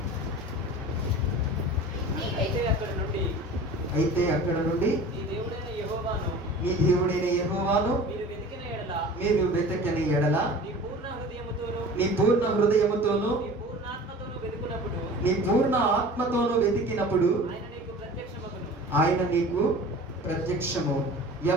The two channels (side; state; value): both; normal; correlation 0.40